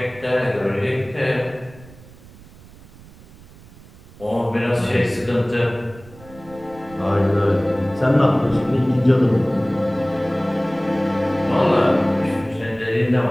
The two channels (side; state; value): right; noise; rumble, 22 dB below the sound